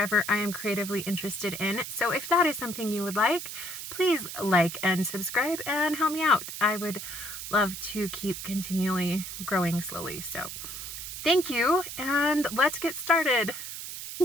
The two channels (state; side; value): noise; right; hiss, 8 dB below the sound